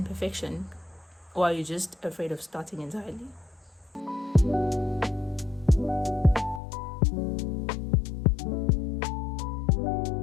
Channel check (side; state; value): right; drops out; at 6.6 s